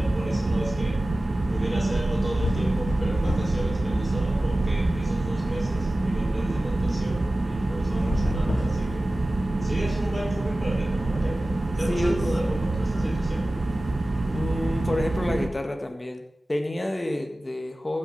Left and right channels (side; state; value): both; normal; correlation 0.96